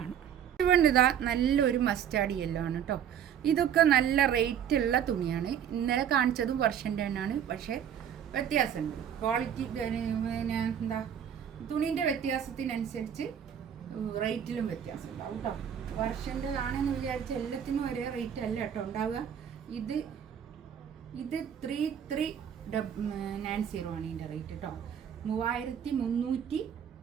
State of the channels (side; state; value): left; quieter; 9.0 dB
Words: ഇതുകൊണ്ട് ഇതാ നല്ലൊരു മസ്റ്റാർഡ് യെല്ലോ ആണ് കേട്ടോ. ഇതൊക്കെ നല്ല റേറ്റുള്ള തുണിയാണ്. ഇന്നലെ കാണിച്ചതും വർഷൻ്റെ തന്നെയാണ്, പക്ഷേ വ്യത്യാസമുണ്ട്. ക്വാളിറ്റി പിന്നെ എന്താ തുണീൻ്റെ വ്യത്യാസത്തിനനുസരിച്ച് റേറ്റിലും വ്യത്യാസം ഉണ്ടാവും കേട്ടോ. വർഷൻ്റെതാണെന്ന് വിചാരിച്ച് എല്ലാത്തിനും ഒരേ റേറ്റ് അല്ല കേട്ടോ ഉണ്ടാവുക. ഇത് 3390 ആണ് ഇതിൻ്റെ റേറ്റ് കേട്ടോ. 3390